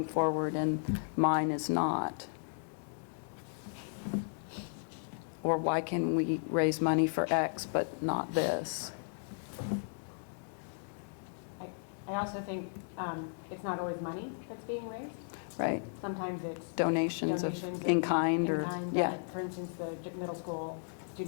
forward and mine is not? Or why can we raise money for X but not this? Right. I also think it's not always money that's being raised. Right, Sometimes it's donations donations in kind or, that, yeah. For instance, the middle school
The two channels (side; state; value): right; silent; digital silence